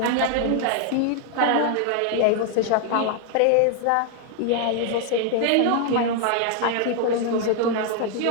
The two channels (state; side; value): different; both; correlation 0.00